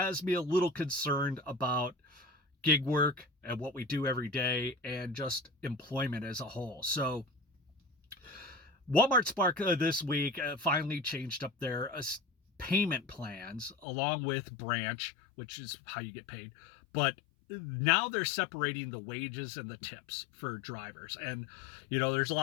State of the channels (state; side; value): drops out; right; at 13.9 s